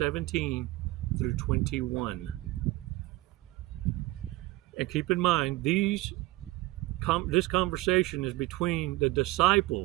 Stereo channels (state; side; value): quieter; left; 19.3 dB